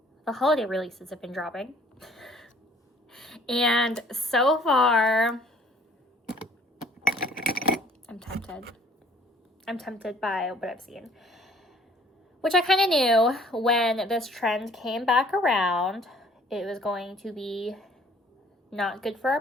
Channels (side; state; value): both; normal; correlation 0.56